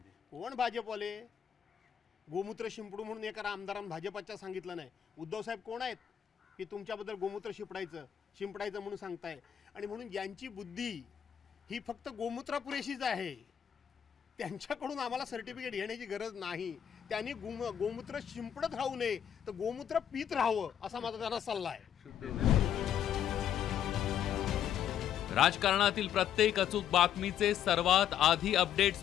कोण भाजपवाले? गोमूत्र शिंपडू म्हणून एका आमदारांनी भाजपच्या सांगितलं नाही. उद्धव साहेब कोण आहेत की तुमच्याबद्दल गोमूत्र शिंपडायचं म्हणून सांगताय? आणि म्हणून यांची बुद्धी ही फक्त गोमूत्रा पुरेशीच आहे. त्यांच्याकडून आम्हाला सर्टिफिकेट घेण्याची गरज नाही. त्यांनी गोमूत्र शिंपडत राहू नये तर गोमूत्र पीत राहावं असा माझा त्यांना सल्ला आहे. राजकारणातील प्रत्येक अचूक बातमीचे सर्वात आधी अपडेट्स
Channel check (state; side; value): quieter; right; 9.6 dB